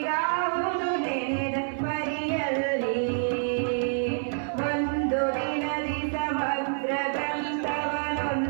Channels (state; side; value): silent; left; digital silence